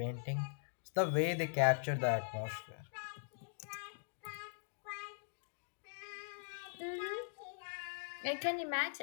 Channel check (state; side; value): silent; right; digital silence